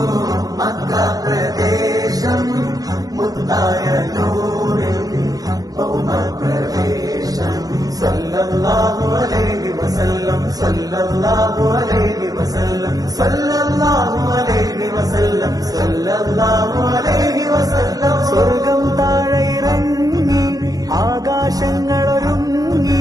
മക്ക പ്രദേശം മുത്തായ നൂറിൽ ഭൗമപ്രവേശം സല്ലല്ലാഹു അലൈഹി വസല്ലം സല്ലല്ലാഹു അലൈഹി വസല്ലം സല്ലല്ലാഹു അലൈഹി വസല്ലം സല്ലല്ലാഹു അലൈഹി വസല്ലം സ്വർഗം താഴെ ഇറങ്ങി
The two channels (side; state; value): left; late; 0.18 ms